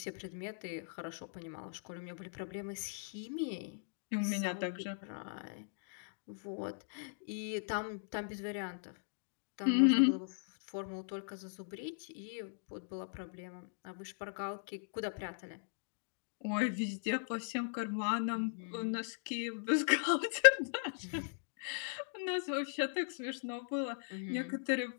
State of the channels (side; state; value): right; silent; digital silence